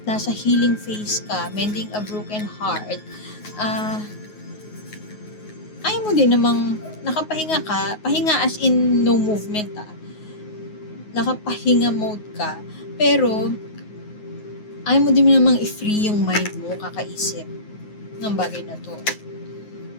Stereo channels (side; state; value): right; late; 9.4 ms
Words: nasa healing phase ka, mending a broken heart, ayaw mo din namang nakapahinga ka, pahinga as in no movement nakapahinga mode ka, pero ayaw mo din namang i-free yung mind mo, kakaisip ng bagay na to.